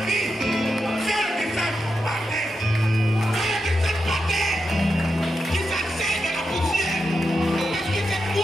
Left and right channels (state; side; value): normal; both; correlation 0.87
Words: vie, fais le descendre par terre. Fais le descendre par terre. Qui s'asseye de la poussière. Parce que c'est